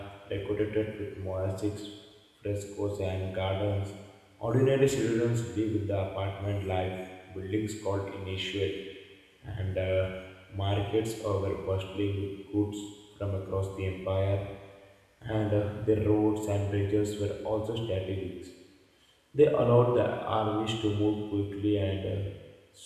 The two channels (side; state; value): both; identical; correlation 1.00